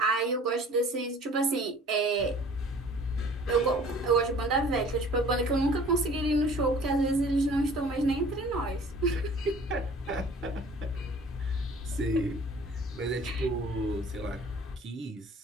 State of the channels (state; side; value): normal; both; correlation 0.49